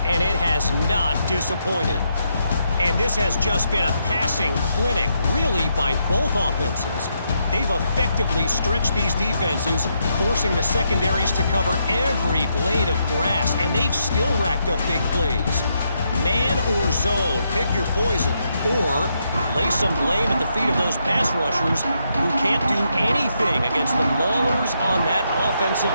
and it has not disappointed. And this has just been a passing clinic, really, by both offenses. They've effectively stretched these defenses, forcing the secondaries to cover every blade of grass, and they've still racked up big plays. Man or zone, pick your poison, or lay some blame at the feet of those pass rushers who can't do anything against the maulers on that offensive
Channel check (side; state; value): both; inverted; correlation -0.79